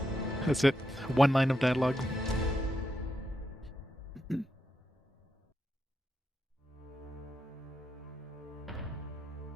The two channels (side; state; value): both; normal; correlation 0.84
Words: That's it. One line of dialogue. You